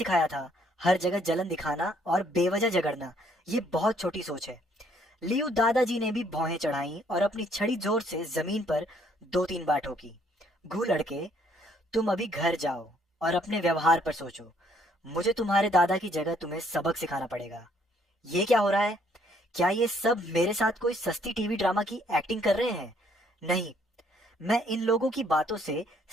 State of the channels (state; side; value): normal; both; correlation 0.66